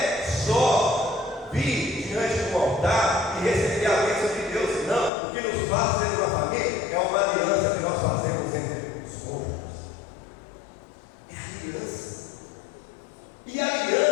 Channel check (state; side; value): drops out; right; at 5.1 s